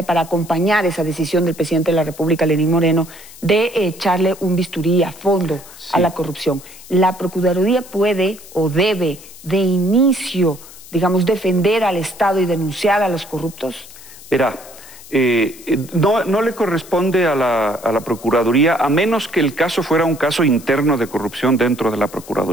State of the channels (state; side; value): noise; left; hiss, 19 dB below the sound